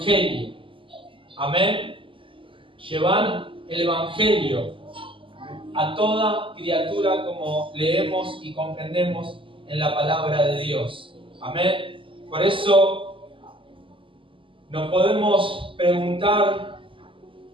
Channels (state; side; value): late; left; 0.25 ms